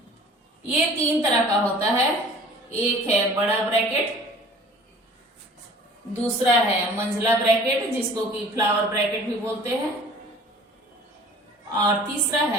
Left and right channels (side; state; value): both; normal; correlation 0.47